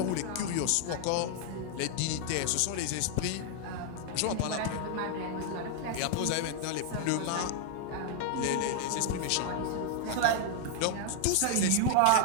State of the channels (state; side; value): different; both; correlation 0.00